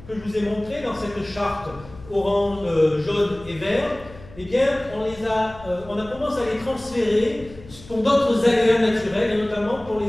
que je vous ai montrés dans cette charte orange, jaune et vert, eh bien, on a commencé à les transférer pour d'autres aléas naturels, et notamment pour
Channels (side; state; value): left; noise; hum, 19 dB below the sound